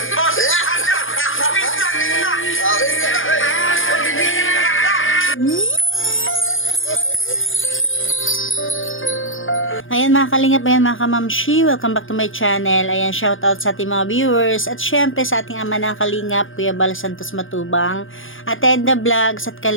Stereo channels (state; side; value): late; right; 0.58 ms